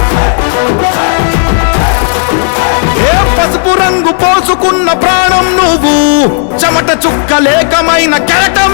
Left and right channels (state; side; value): silent; right; digital silence